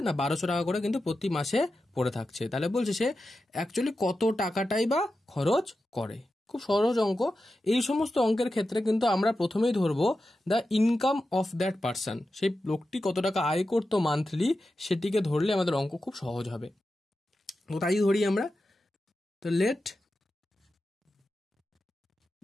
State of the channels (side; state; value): both; normal; correlation 0.91